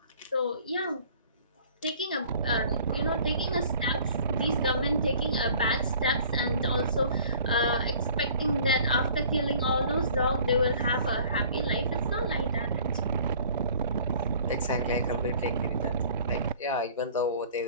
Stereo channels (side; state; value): both; inverted; correlation -0.51